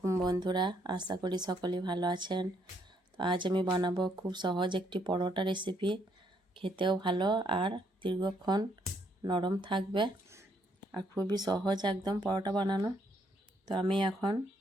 বন্ধুরা, আশা করি সকলেই ভালো আছেন। তো আজ আমি বানাবো খুব সহজ একটি পরোটা রেসিপি। খেতেও ভালো আর দীর্ঘক্ষণ নরম থাকবে আর খুবই সহজ একদম পরোটা বানানো। তো আমি এখন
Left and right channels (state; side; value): normal; both; correlation 0.71